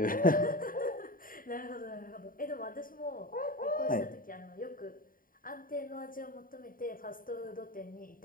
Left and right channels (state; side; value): late; right; 0.41 ms